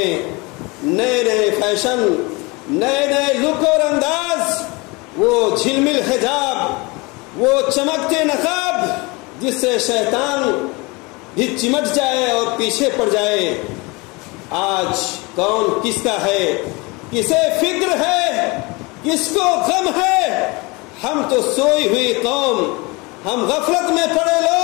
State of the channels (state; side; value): quieter; right; 26.2 dB